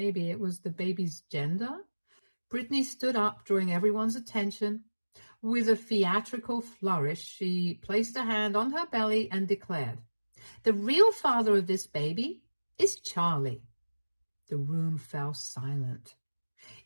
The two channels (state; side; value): inverted; both; correlation -1.00